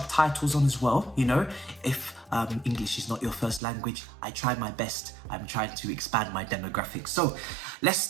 on as well. You know, if English is not your first language, I try my best. I'm trying to expand my demographics. So let's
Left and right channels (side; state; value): left; drops out; at 3.6 s